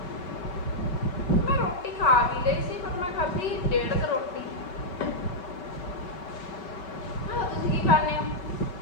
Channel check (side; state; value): right; late; 5.3 ms